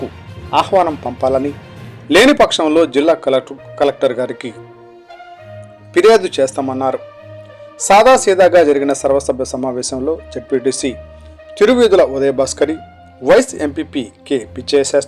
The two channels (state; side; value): identical; both; correlation 1.00